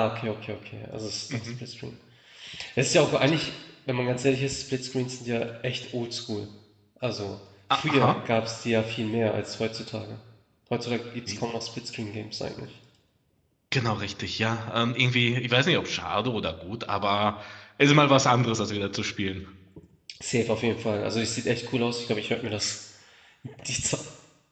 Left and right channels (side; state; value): both; identical; correlation 1.00